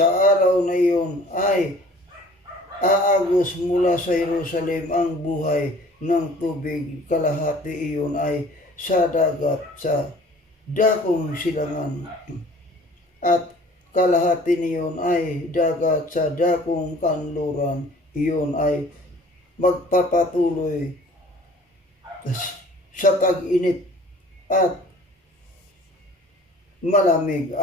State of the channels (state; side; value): normal; both; correlation 0.49